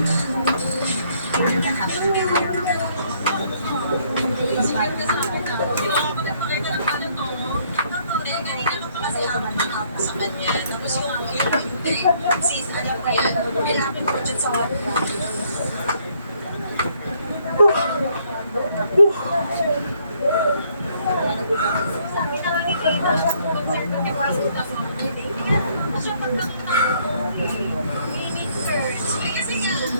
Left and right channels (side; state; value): both; inverted; correlation -0.67